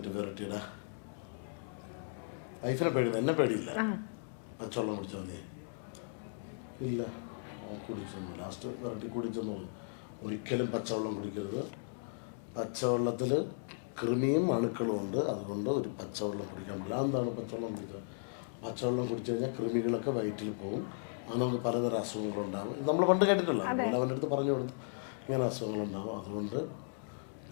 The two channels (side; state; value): right; silent; digital silence